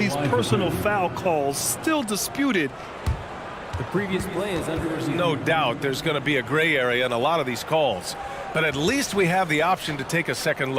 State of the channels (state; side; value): identical; both; correlation 1.00